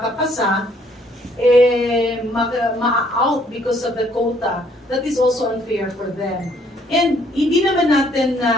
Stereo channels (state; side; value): normal; both; correlation 0.64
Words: ma-out because of the quota, that is also unfair for them. And hindi naman natin